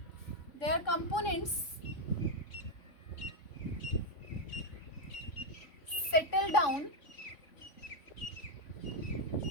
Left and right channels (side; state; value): right; late; 3.5 ms